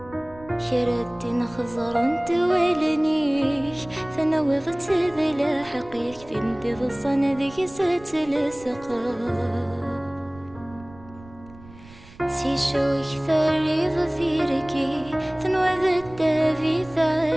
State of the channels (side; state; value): right; noise; rumble, 21 dB below the sound